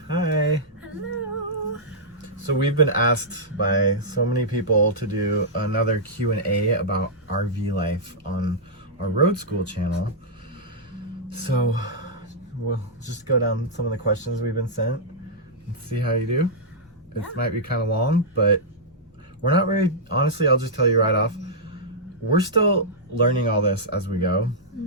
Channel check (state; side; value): normal; both; correlation -0.11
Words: Hi. Hello. So we've been asked by so many people to do another Q&A about RV life on our Road School channel. So we'll just go down some of the questions we've been sent and see how you do. Yeah. It might be kind of long, but we're not very, honestly, I'll just tell you right off, we're still learning all this as we go.